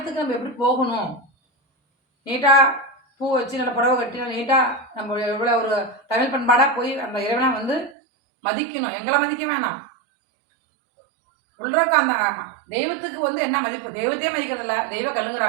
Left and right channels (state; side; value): drops out; left; at 8.0 s